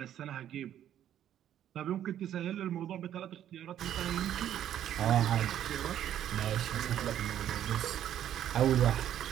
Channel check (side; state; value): left; quieter; 10.9 dB